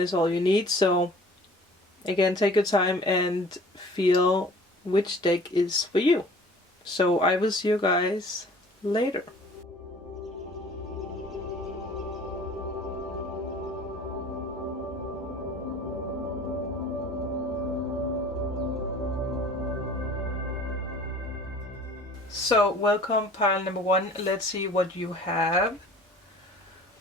all you need. So again, take your time and feel which deck is for you. So I will see you guys later. So welcome pile number 1. Let's see what you have.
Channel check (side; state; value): both; normal; correlation 0.48